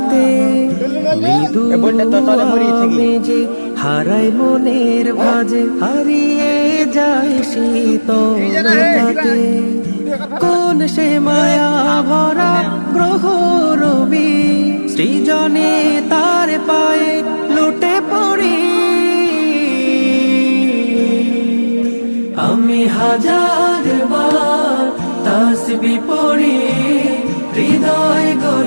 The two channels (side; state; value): both; inverted; correlation -1.00